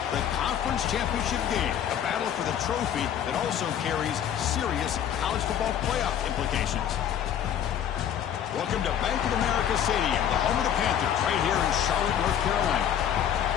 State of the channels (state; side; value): quieter; right; 9.6 dB